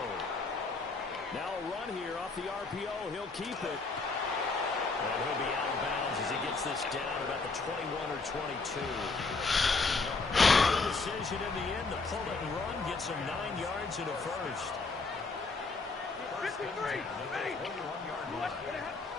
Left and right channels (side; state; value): right; quieter; 3.9 dB